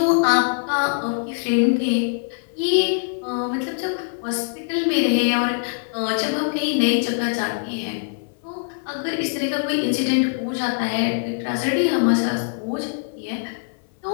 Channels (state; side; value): silent; right; 57 dB below the other